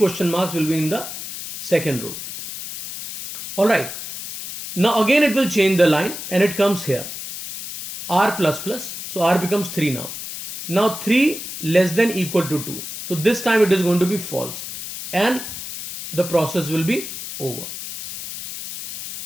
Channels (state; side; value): noise; left; hiss, 9 dB below the sound